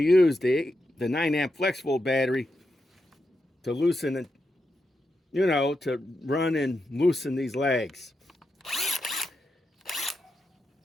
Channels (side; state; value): both; normal; correlation 0.86